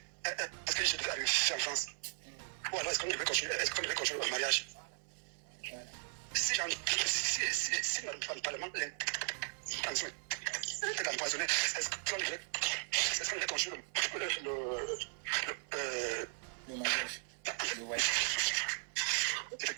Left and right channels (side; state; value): left; silent; 53 dB below the other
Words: Est-ce que je devais aller faire en France? Ou alors est-ce qu'on devait continuer le mariage? Si le Parlement l'intention était d'empoisonner, est-ce qu'on devait continuer le mariage?